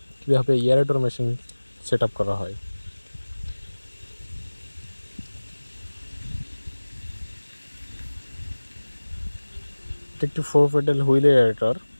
কীভাবে এয়ারেটর মেশিন সেট আপ করা হয়। এটা একটি 4 পেডাল হুইল এয়ারেটর।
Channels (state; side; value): inverted; both; correlation -1.00